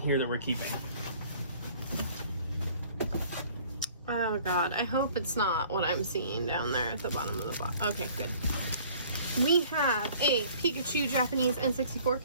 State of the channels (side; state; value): both; inverted; correlation -0.53